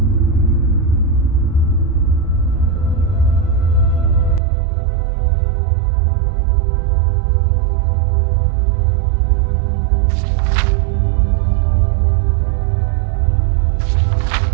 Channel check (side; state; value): left; drops out; at 4.4 s